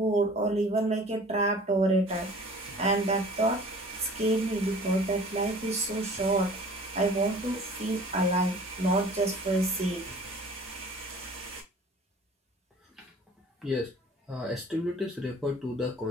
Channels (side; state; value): both; normal; correlation 0.47